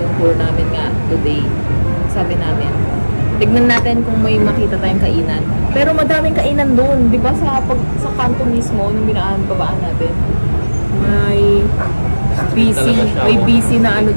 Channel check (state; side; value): inverted; both; correlation -1.00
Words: tour namin nga today. Sabi namin, tignan natin kung may makita tayong kainan. Pero madaming kainan doon, di ba sa kanto mismo, nung babaan natin. May busy na ano